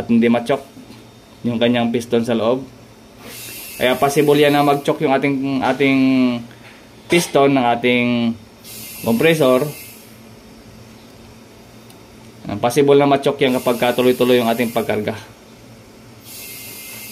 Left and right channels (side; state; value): both; identical; correlation 1.00